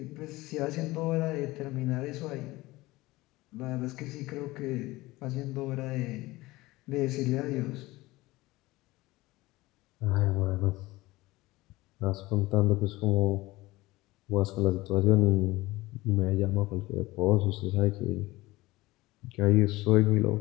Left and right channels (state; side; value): quieter; right; 19.7 dB